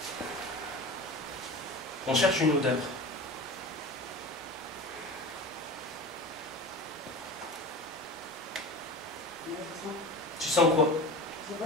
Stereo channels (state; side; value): normal; both; correlation 0.33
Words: On cherche une odeur. Tu sens quoi? Je sais